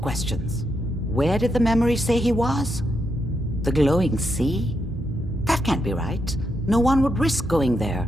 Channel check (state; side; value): normal; both; correlation 0.82